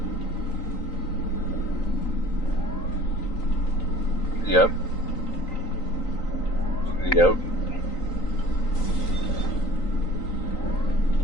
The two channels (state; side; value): late; right; 3.9 ms